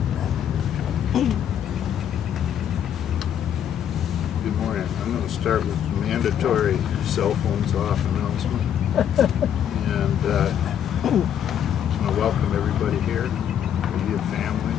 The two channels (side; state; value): right; quieter; 9.5 dB